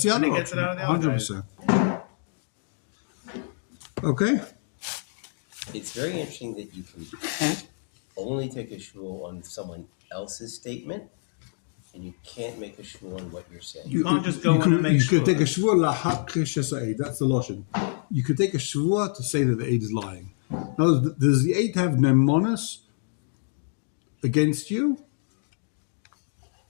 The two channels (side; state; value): right; silent; 60 dB below the other